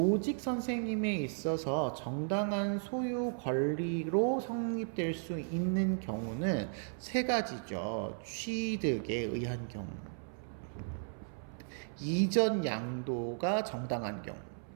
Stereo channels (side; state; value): left; silent; 54 dB below the other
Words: 선생님에 있어서 정당한 소유 권리로 성립될 수 있는 경우는 세 가지죠. 취득에 의한 경우, 이전 양도가 정당한 경우,